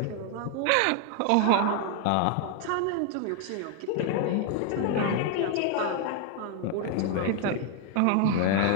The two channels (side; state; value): both; different; correlation 0.00